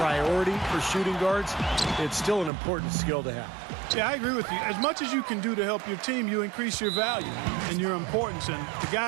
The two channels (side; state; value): left; drops out; at 2.5 s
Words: for shooting guards, it's still an important skill to have. Yeah, I agree with you. As much as you can do to help your team, you increase your value and your importance. And the